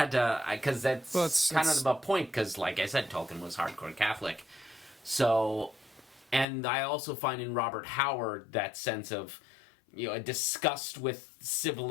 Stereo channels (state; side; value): drops out; right; at 6.5 s